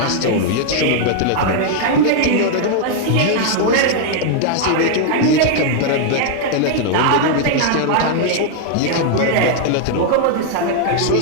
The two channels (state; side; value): different; both; correlation 0.00